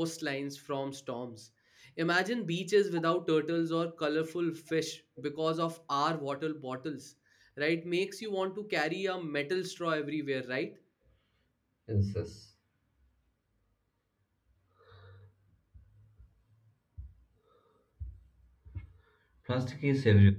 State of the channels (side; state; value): both; identical; correlation 1.00